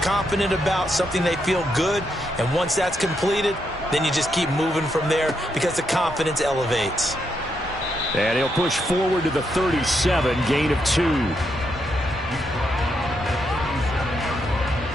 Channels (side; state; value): both; normal; correlation 0.80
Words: about, something they feel good. And once that's completed, then you just keep moving from there because the confidence elevates. And he'll push forward to the 37, gain of 2.